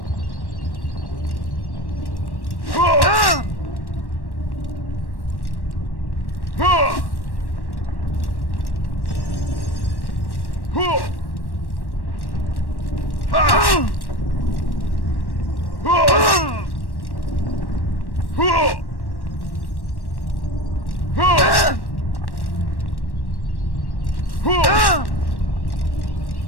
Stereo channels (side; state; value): right; late; 1.1 ms